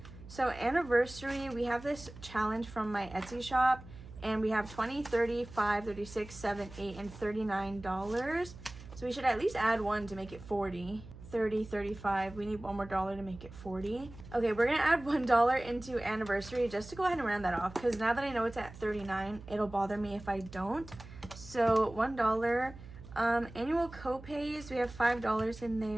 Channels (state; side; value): noise; right; hum, 16 dB below the sound